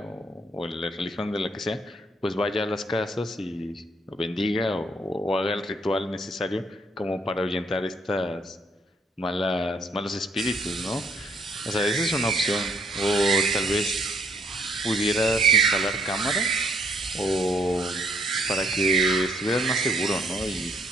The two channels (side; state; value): both; normal; correlation 0.67